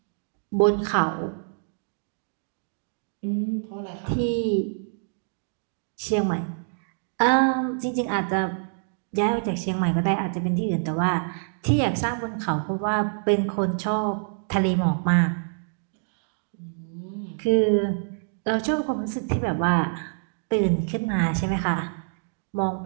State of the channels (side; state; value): left; silent; digital silence